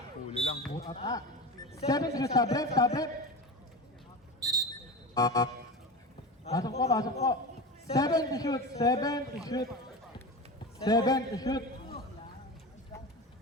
Huli lang. Butata. 7 to shoot. Tablet. Pasok po. 7 to shoot. 7 to shoot. 7 to shoot.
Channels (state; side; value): normal; both; correlation 0.26